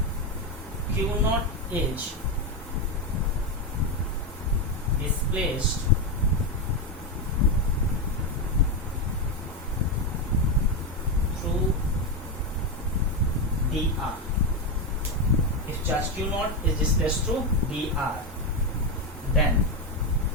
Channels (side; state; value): both; normal; correlation 0.09